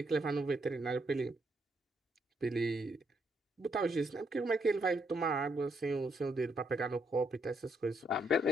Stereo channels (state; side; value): normal; both; correlation 0.75